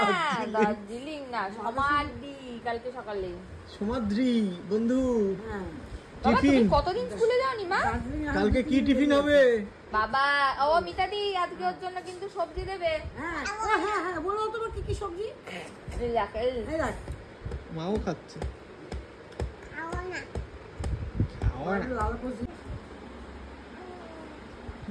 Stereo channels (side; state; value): both; identical; correlation 1.00